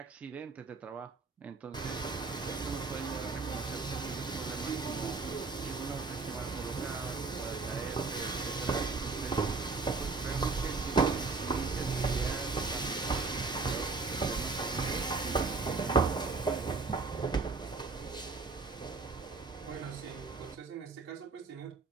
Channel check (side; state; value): left; quieter; 4.0 dB